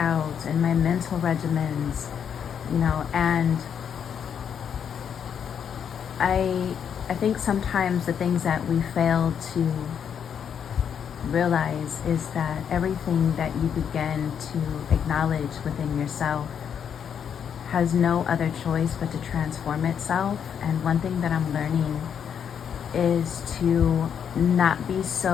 in my mental regimens, you know, and I think sometimes the things that we fail to realize is that everything that you begin to acknowledge within yourself has no other choice but to transform itself. And one thing that I'm learning is to not be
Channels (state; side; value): quieter; right; 8.0 dB